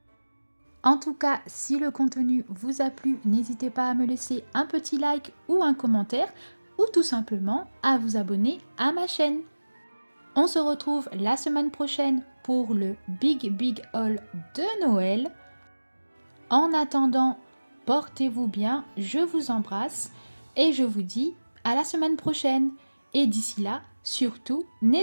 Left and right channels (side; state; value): both; inverted; correlation -1.00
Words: En tout cas, si le contenu vous a plu, n'hésitez pas à me laisser un petit like ou un commentaire ou tout simplement à vous abonner à ma chaîne. On se retrouve la semaine prochaine pour le Big Haul de Noël. En attendant, portez-vous bien, je vous embrasse et je vous dis à la semaine prochaine. Et d'ici là, surtout,